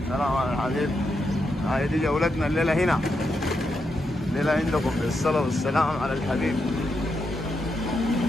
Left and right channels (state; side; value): normal; both; correlation 0.83